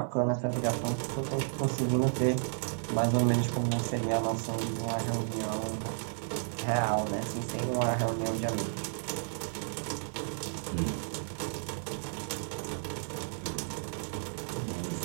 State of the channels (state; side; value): silent; left; 56 dB below the other